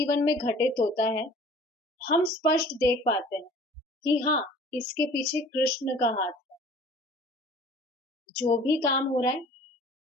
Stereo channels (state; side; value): normal; both; correlation 0.48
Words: में घटित होता है, हम स्पष्ट देख पाते हैं कि हाँ, इसके पीछे कृष्ण का हाथ है। जो भी काम हो रहा है